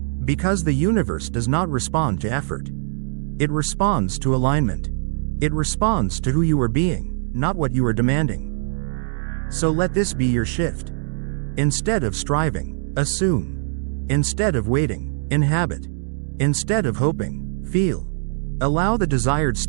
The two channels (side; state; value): left; silent; 64 dB below the other